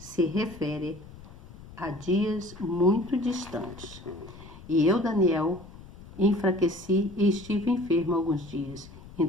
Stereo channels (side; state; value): left; noise; rumble, 18 dB below the sound